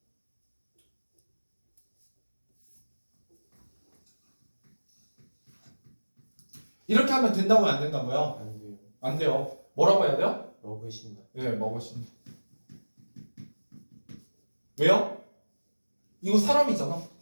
이렇게 하면 된다고요, 안 된다고요? 안 돼요. 안 돼요. 뭐라고 해야 돼요? 먹으신다. 예, 먹으신. 왜요? 이거 사람이잖아.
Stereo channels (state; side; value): inverted; both; correlation -1.00